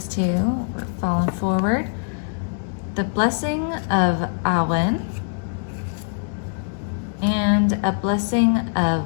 two, we're falling forward. The blessing of Awen and a blessing of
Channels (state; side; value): silent; right; digital silence